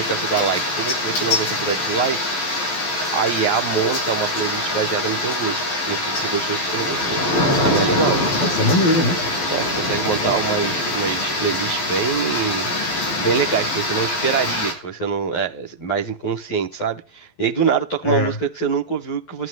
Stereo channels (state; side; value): late; right; 12 ms